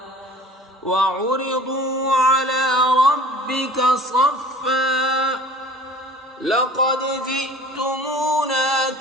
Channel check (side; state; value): both; normal; correlation 0.45